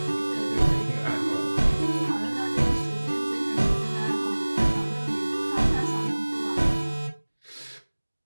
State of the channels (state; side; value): inverted; both; correlation -1.00